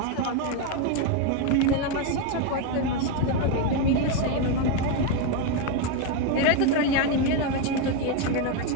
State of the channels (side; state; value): both; different; correlation 0.02